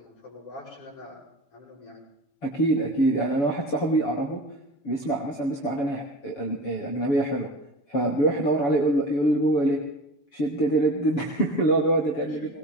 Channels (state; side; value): late; right; 7.0 ms